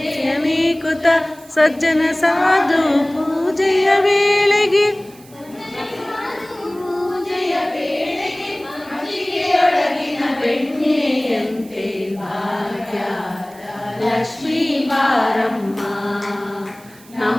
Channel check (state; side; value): noise; right; hiss, 24 dB below the sound